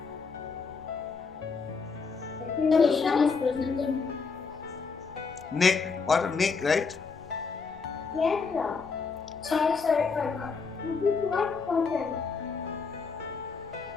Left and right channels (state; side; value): quieter; right; 5.0 dB